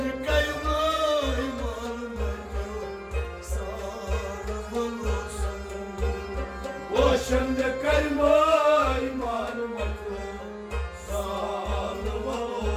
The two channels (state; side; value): identical; both; correlation 1.00